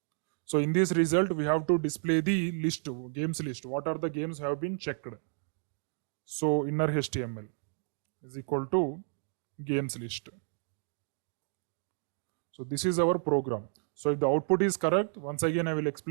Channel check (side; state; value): left; silent; 57 dB below the other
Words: So in this result, we have to display the list, games list. What are the games have been checked? So inner HTML is equal to games list. So this is our program. So if the output is correct, once again I will